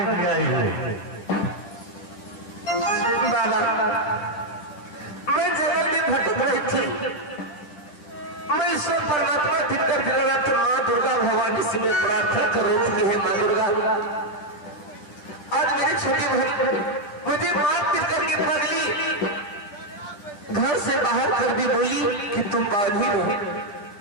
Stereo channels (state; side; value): late; right; 10 ms